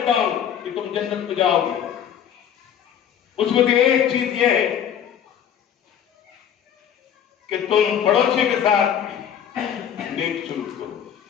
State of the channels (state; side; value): quieter; right; 9.1 dB